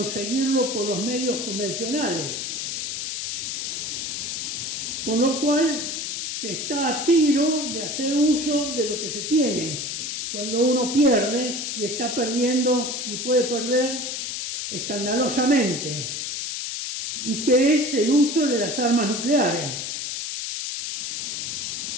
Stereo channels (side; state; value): left; noise; hiss, 4 dB below the sound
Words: por los medios convencionales. Con lo cual se está a tiro de hacer uso de lo que se tiene. Cuando uno pierde y está perdiendo y puede perder escandalosamente, y que es el uso de las armas nucleares.